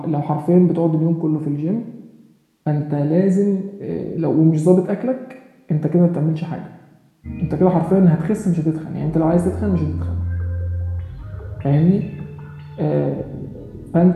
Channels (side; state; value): both; identical; correlation 1.00